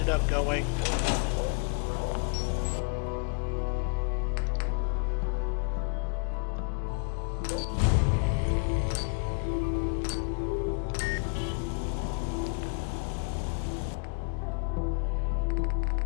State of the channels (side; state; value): right; quieter; 36.0 dB